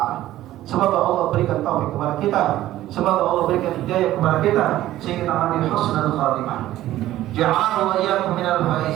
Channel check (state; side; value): quieter; left; 14.4 dB